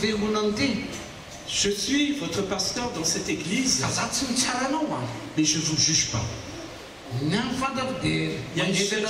fiangonana ity. Je suis votre pasteur dans cette église, Fa za tsy mitsara anao a. mais je ne vous juge pas. Ny amin'ny fantako dia mangetana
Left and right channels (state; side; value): identical; both; correlation 1.00